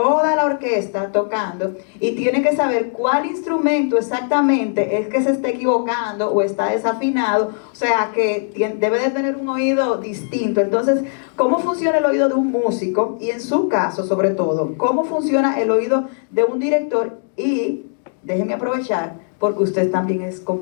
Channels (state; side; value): silent; right; digital silence